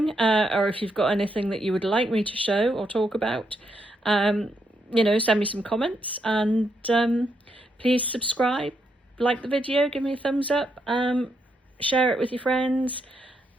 or if you've got anything that you would like me to show or talk about, you know, send me some comments, and please subscribe, like the video, give me a thumbs up, share it with your friends,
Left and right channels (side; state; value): both; normal; correlation 0.79